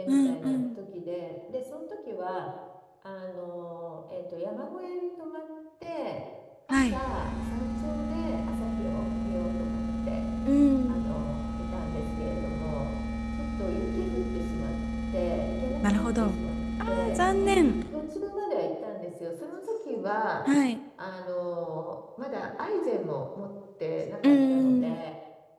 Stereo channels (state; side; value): identical; both; correlation 1.00